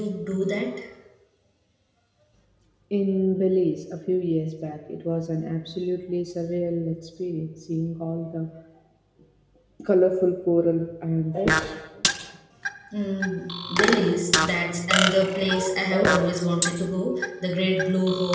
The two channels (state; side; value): identical; both; correlation 1.00